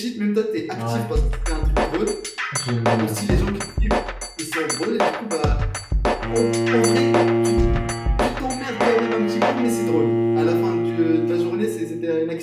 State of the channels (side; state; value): both; identical; correlation 1.00